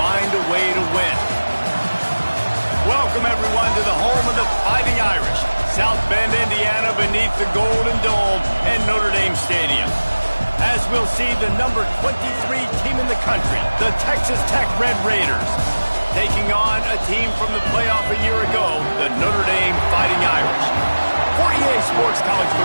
a way to win. Welcome, everyone, to the home of the Fighting Irish, South Bend, Indiana, beneath the Golden Dome and Notre Dame Stadium. As we'll see the number 23 team in the country, the Texas Tech Red Raiders, taking on a team from the playoff a year ago, the Notre Dame Fighting Irish. For EA Sports College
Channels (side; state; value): both; inverted; correlation -1.00